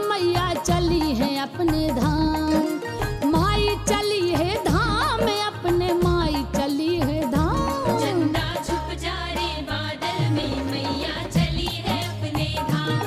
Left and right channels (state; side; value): identical; both; correlation 1.00